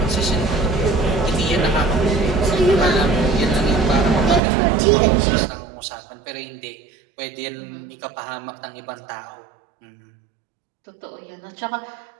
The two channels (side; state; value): left; drops out; at 4.4 s